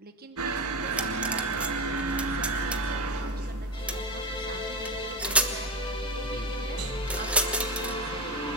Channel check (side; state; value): both; normal; correlation 0.13